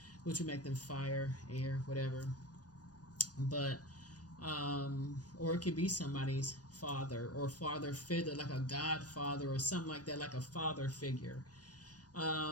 which would make them fire, air, whatever. But or it could be somebody's father or father figure, like a godfather or something like that, like a father figure.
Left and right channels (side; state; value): right; late; 0.68 ms